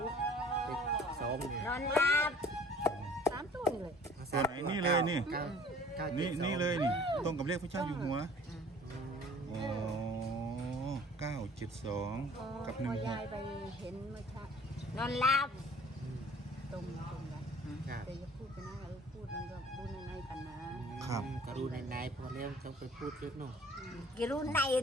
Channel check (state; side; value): normal; both; correlation 0.50